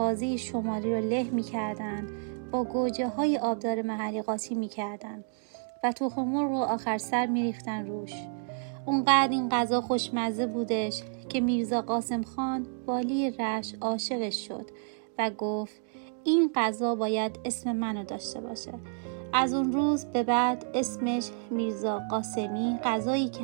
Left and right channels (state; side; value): silent; left; 58 dB below the other